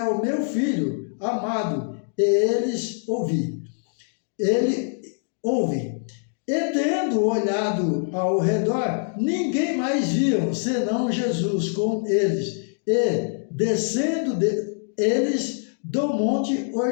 o meu filho amado, e eles ouvi. Ele ouve. E tendo olhado ao redor, ninguém mais viam, senão Jesus com eles. E descendo eles do monte,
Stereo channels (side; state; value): right; silent; 62 dB below the other